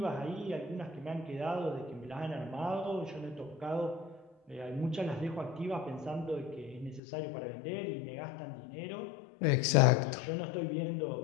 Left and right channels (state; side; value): drops out; right; at 7.0 s